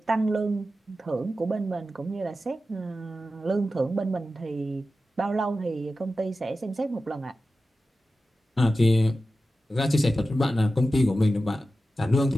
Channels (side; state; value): both; normal; correlation 0.93